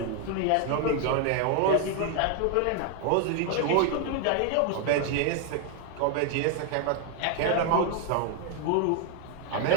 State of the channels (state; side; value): different; both; correlation 0.01